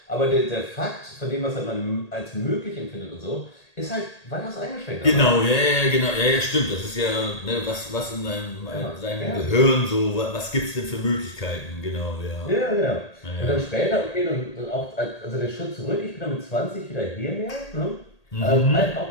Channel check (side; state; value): right; late; 1.8 ms